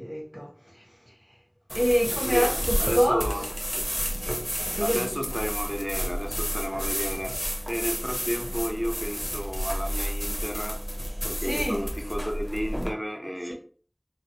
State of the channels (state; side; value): identical; both; correlation 1.00